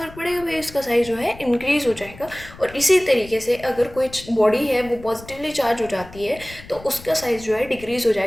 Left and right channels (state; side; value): noise; left; rumble, 18 dB below the sound